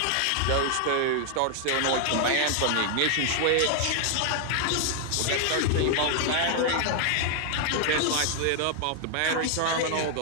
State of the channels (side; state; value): both; different; correlation 0.00